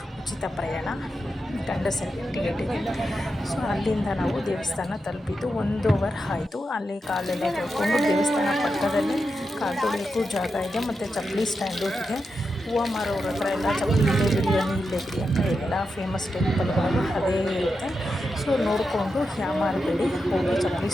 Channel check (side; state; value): both; normal; correlation 0.88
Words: ಉಚಿತ ಪ್ರಯಾಣ, ಗಂಡಸರಿಗೆ ಟಿಕೆಟ್ ಇದೆ. ಸೊ ಅಲ್ಲಿಂದ ನಾವು ದೇವಸ್ಥಾನ ತಲುಪಿದ್ದು 1 ಅವರ್ ಆಯಿತು. ಅಲ್ಲಿ ಕಾಲೆಲ್ಲ ತೊಳ್ಕೊಂಡು ದೇವಸ್ಥಾನ ಪಕ್ಕದಲ್ಲಿ ಕಾಲು ತೊಳೆಯೋಕ್ಕೂ ಜಾಗ ಇದೆ, ಮತ್ತು ಚಪ್ಪಲಿ ಸ್ಟ್ಯಾಂಡು ಇದೆ. ಹೂವು ಮಾರೋರ ಹತ್ರ ಎಲ್ಲ ಚಪ್ಪಲಿ ಇಲ್ಲೇ ಬಿಡಿ ಅಂತ ಎಲ್ಲ ಫೇಮಸ್ ಟೆಂಪಲ್ಗಳು ಅದೇ ಇರುತ್ತೆ. ಸೊ ನೋಡಿಕೊಂಡು ಯಾಮಾರಬೇಡಿ, ಹೋಗಿ ಚಪ್ಪಲಿ